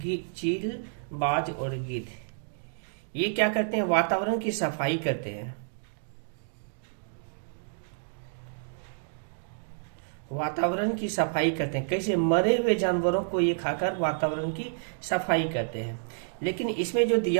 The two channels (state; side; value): silent; left; digital silence